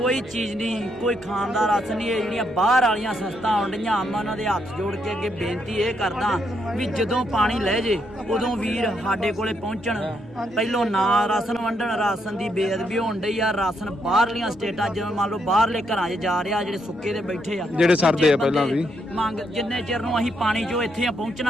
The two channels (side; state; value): both; normal; correlation 0.76